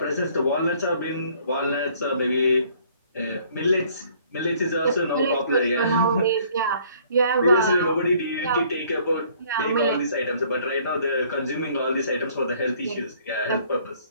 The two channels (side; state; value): both; inverted; correlation -0.59